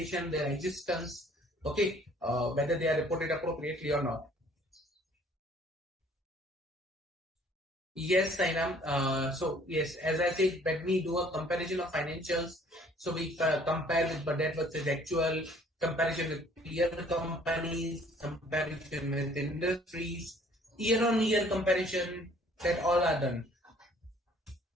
their existence. Okay, whether they are reported appropriately or not. Yes, Sainam. So yes, as I said, when we do a comparison of financials, so we compare with budget versus actual, comparison with peer companies, comparison with industries, year-on-year comparison, that all are done.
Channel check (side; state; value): both; normal; correlation 0.57